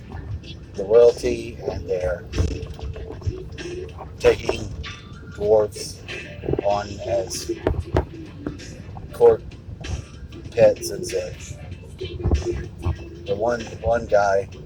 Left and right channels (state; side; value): identical; both; correlation 1.00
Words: The royalty and their taking dwarfs on as court pets and such. The one guy,